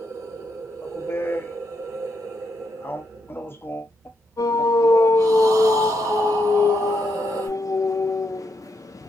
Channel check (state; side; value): normal; both; correlation 0.80